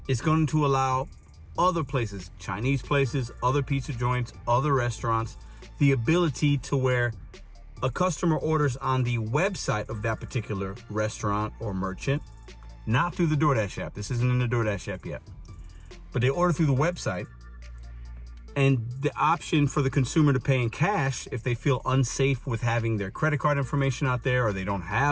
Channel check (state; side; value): identical; both; correlation 1.00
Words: is going to allow other places, Chinese places, other pizza joints, other restaurants, the ability to where a customer orders on the website of that particular restaurant or merchant, not through the DoorDash app. This isn't in the DoorDash app yet. But they order through the website, and the option for the consumer to pay in cash if they feel unsafe with having their credit card information out there, or they don't